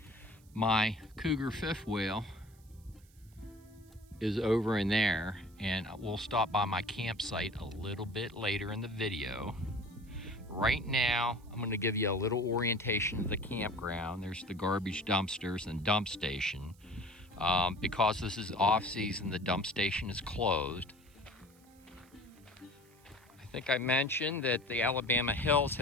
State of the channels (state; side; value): noise; right; hiss, 29 dB below the sound